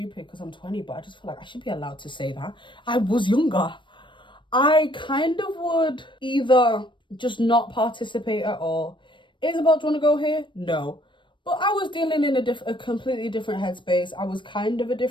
because I'm 20, but I just feel like I should be allowed to say that. I was younger. I kind of would either just not participate at all. Isabel, do you want to go here? No. But I was dealing in a completely different headspace. I was kind of a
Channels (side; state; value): right; late; 0.23 ms